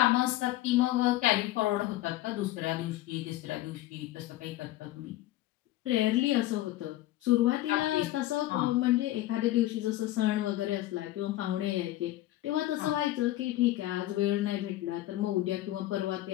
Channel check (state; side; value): quieter; right; 15.7 dB